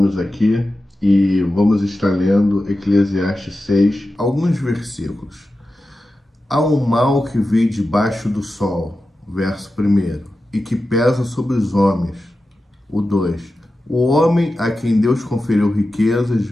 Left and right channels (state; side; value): normal; both; correlation 0.92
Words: aqui e vamos estar lendo Eclesiastes 6, alguns versículos. Há um mal que vem debaixo do sol, verso 1, e que pesa sobre os homens. O 2. O homem a quem Deus conferiu riquezas,